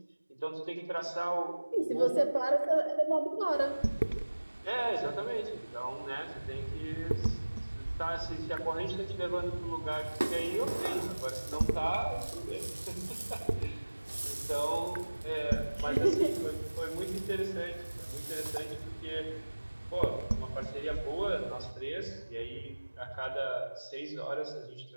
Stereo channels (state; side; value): inverted; both; correlation -1.00